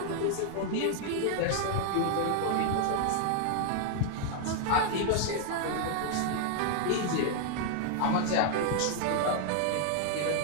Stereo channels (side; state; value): both; different; correlation 0.00